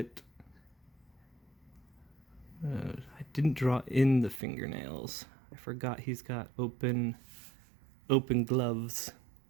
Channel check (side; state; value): left; drops out; at 4.4 s